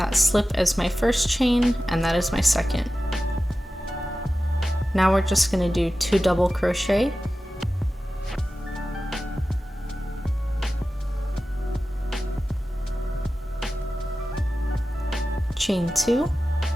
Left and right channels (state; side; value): normal; both; correlation 0.95